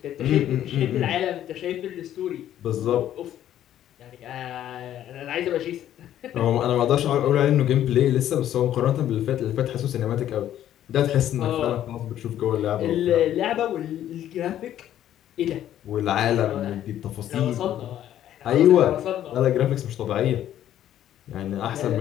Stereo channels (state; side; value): quieter; right; 11.6 dB